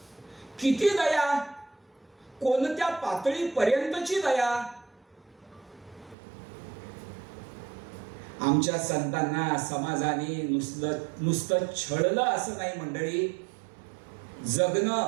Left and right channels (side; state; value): left; drops out; at 6.2 s